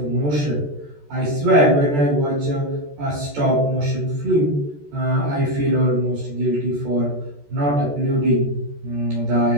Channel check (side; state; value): left; late; 14 ms